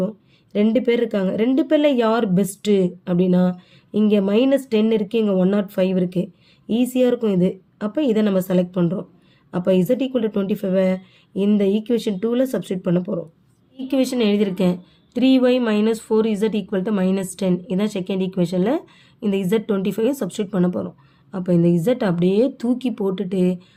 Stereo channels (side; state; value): both; identical; correlation 1.00